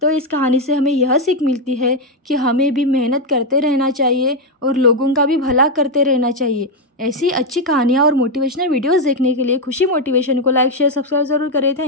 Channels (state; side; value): normal; both; correlation 0.04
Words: तो इस कहानी से हमें यह सीख मिलती है कि हमें भी मेहनत करते रहना चाहिए और लोगों का भी भला करते रहना चाहिए। ऐसी अच्छी कहानियाँ और मोटिवेशनल वीडियोस देखने के लिए खुशी मोटिवेशन को लाइक, शेयर, सब्सक्राइब ज़रूर करें।